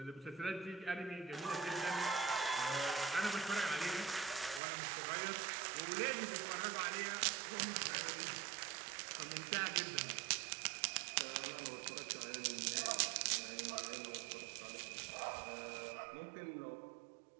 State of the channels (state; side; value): drops out; left; at 4.6 s